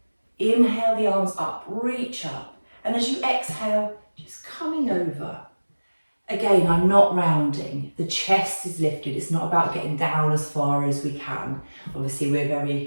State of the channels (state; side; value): inverted; both; correlation -1.00